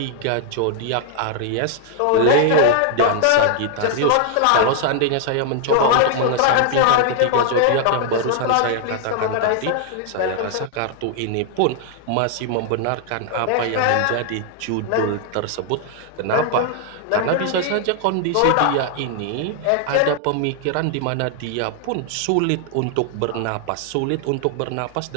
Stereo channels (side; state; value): both; different; correlation 0.00